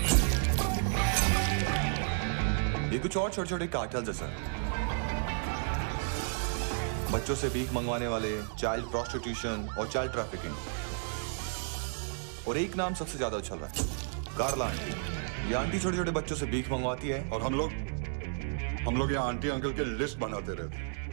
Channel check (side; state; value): left; silent; digital silence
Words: ये कुछ और छोटे छोटे कार्टेल्स है सर। बच्चों से भीख मंगवाने वाले, चाइल्ड प्रोस्टिट्यूशन और चाइल्ड ट्रैफिकिंग। और एक नाम सबसे ज्यादा उछल रहा है, कार्ला आंटी। ये आंटी छोटे छोटे बच्चों से भीख मंगवाती है और हम लोग यहाँ आंटी अंकल के लिस्ट बनाते रहते।